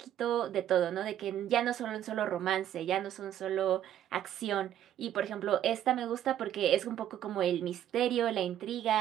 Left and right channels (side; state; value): left; quieter; 11.2 dB